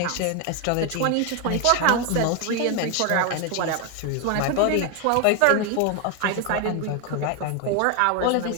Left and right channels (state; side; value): different; both; correlation 0.01